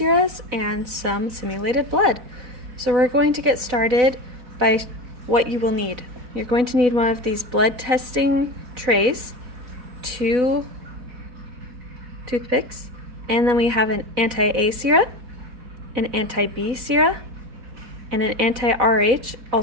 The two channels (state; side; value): late; left; 4.1 ms